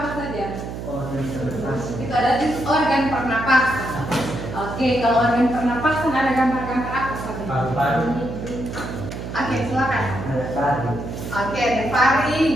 saja? Itu ada organ pernapasan. Oke, kalau organ pernapasan ada gambar-gambar apa saja? Oke, silakan. Oke, ada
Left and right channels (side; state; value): right; noise; hum, 8 dB below the sound